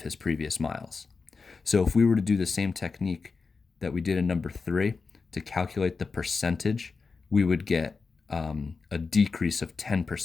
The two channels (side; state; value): right; quieter; 4.6 dB